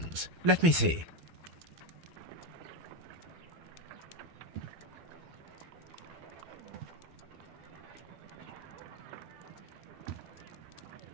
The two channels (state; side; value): late; left; 12 ms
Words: Let me see.